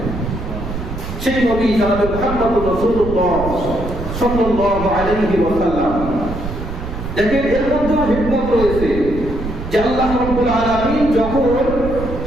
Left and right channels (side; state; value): right; noise; rumble, 7 dB below the sound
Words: সেই নবী জনাব মুহাম্মদুর রাসূলুল্লাহ সাল্লাল্লাহু আলাইহি ওয়াসাল্লাম। দেখেন এর মধ্যে হিকমত রয়েছে যে আল্লাহ রাব্বুল আলামিন যখন